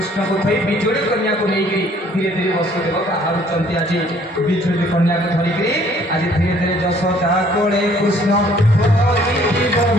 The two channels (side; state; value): both; normal; correlation 0.59